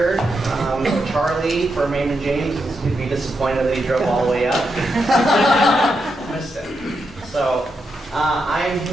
Charlie from Raymond James is going to be disappointed that he drove all the way up. Missed it. So I'm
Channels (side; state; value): both; normal; correlation 0.84